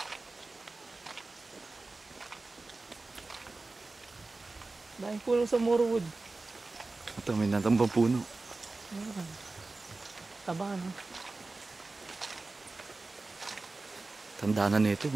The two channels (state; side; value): quieter; left; 3.4 dB